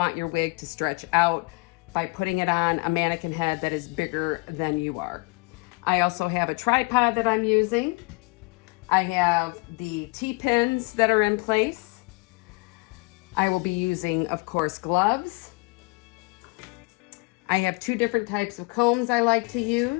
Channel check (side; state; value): right; quieter; 29.2 dB